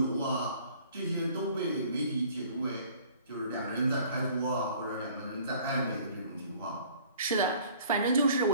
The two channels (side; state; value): both; inverted; correlation -0.53